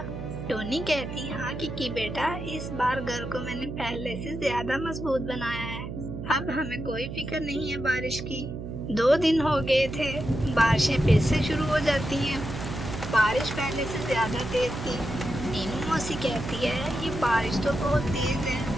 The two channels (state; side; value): noise; right; hum, 8 dB below the sound